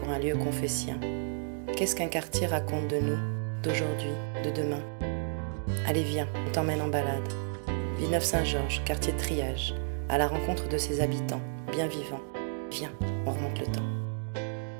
un lieu confessien? Qu'est-ce qu'un quartier raconte de nous, d'aujourd'hui, de demain? Allez, viens, on t'emmène en balade. Villeneuve-Saint-Georges, quartier de triage, à la rencontre de ses habitants, bien vivants. Viens, on remonte le temps.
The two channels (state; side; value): silent; left; digital silence